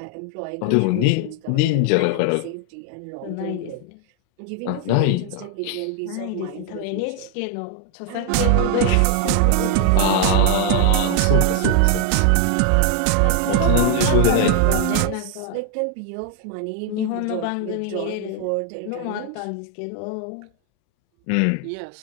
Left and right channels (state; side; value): different; both; correlation 0.00